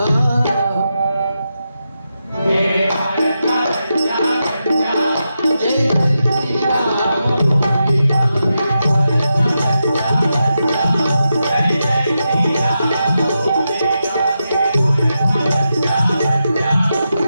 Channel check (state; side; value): inverted; both; correlation -0.88